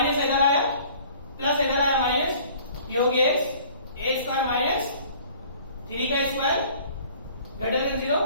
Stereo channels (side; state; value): both; inverted; correlation -0.51